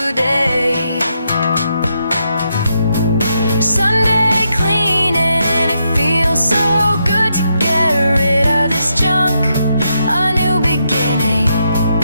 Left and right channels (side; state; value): both; inverted; correlation -0.81